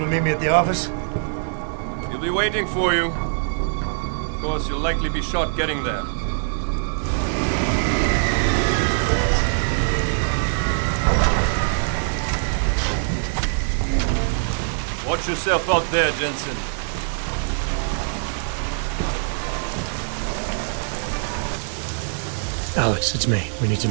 to meet me at the office? He'll be waiting for you. Of course, you'll likely be shot getting there. Watch yourself out there, Jensen. Alex, it's me. We need to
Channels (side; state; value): left; silent; digital silence